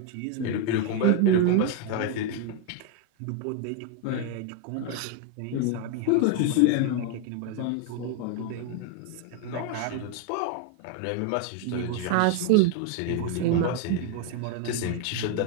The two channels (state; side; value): different; both; correlation 0.01